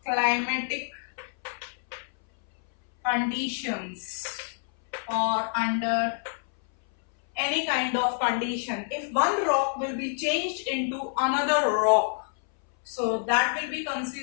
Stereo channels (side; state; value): right; silent; 60 dB below the other